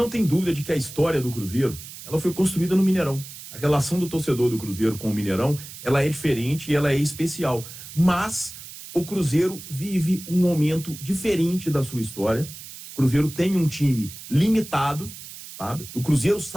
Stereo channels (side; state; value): right; noise; hiss, 14 dB below the sound